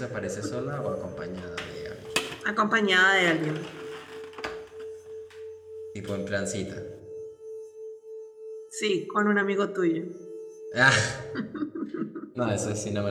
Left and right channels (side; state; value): both; identical; correlation 1.00